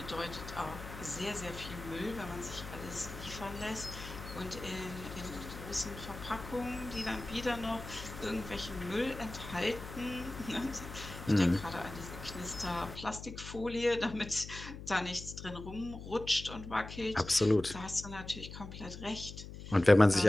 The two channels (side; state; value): left; noise; hum, 11 dB below the sound